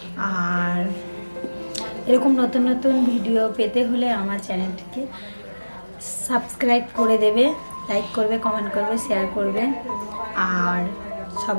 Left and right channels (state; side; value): inverted; both; correlation -1.00